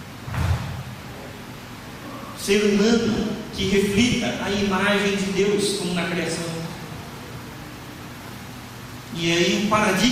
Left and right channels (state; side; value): identical; both; correlation 1.00